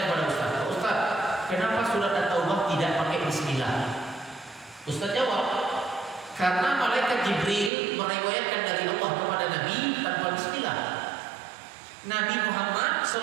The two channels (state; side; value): drops out; left; at 7.7 s